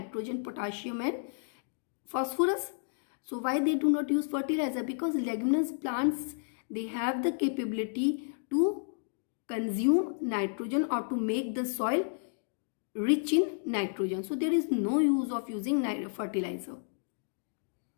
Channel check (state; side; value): silent; right; digital silence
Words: potassium and phosphorus. So why they do not use fertilizer? Because leguminous plants, they have the capability to consume nitrogen or to make the soil rich in nitrogen. So there is no use of using fertilizer.